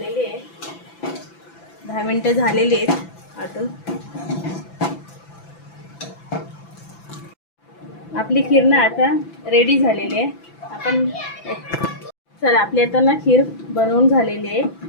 आहे, 10 मिनिटं झालेली आहेत आटून। आपली खीर ना आता रेडी झालेली आहे। आपण चला आपली आता ना खीर बनवून झालेली आहे।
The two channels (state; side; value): late; right; 6.0 ms